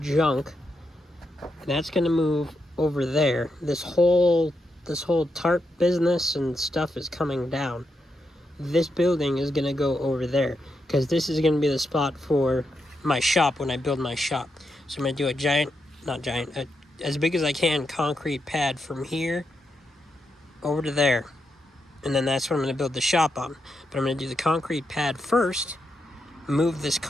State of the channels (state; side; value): normal; both; correlation 0.83